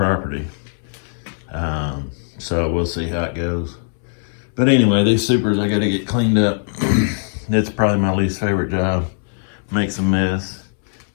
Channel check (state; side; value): silent; right; 66 dB below the other